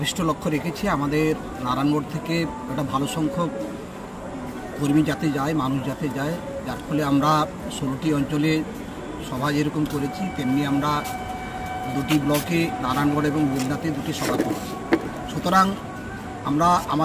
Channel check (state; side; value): identical; both; correlation 1.00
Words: লক্ষ্য রেখেছি আমাদের নারায়ণগড় থেকে একটা ভালো সংখ্যক কর্মী যাতে যায়, মানুষ যাতে যায়, যার ফলে আমরা 16টি অঞ্চলে সভা যেরকম করেছি তেমনি আমরা 2টি ব্লকে নারায়ণগড় এবং বেলদাতে 2টি সভা করেছি। সুতরাং আমরা